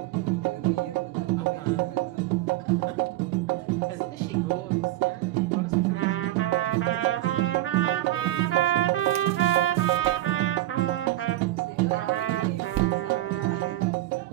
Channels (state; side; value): quieter; left; 15.9 dB